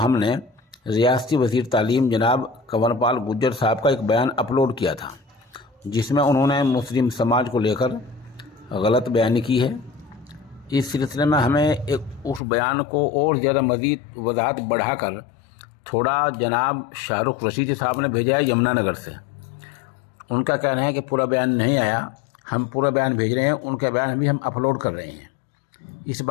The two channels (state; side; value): drops out; right; at 12.4 s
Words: रियासती वज़ीर तालीम जनाब कंवरपाल गुर्जर साहब का एक बयान अपलोड किया था, जिसमें उन्होंने मुस्लिम समाज को लेकर गलत बयानी की है। इस सिलसिले में हमें उस बयान को और ज़्यादा मज़ीद वजाहत बढ़ाकर थोड़ा जनाब शाहरुख रशीद साहब ने भेजा है यमुनानगर से। उनका कहना है कि पूरा बयान नहीं आया, हम पूरा बयान भेज रहे हैं, उनका बयान भी हम अपलोड कर रहे हैं। इस